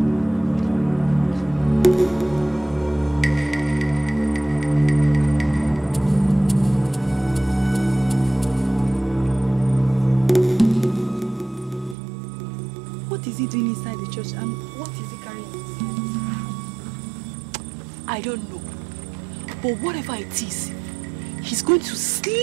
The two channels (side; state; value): left; drops out; at 12.0 s